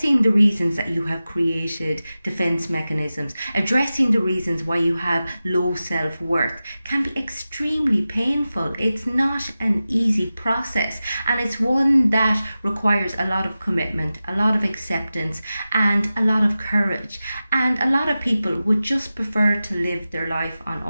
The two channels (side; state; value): both; inverted; correlation -0.95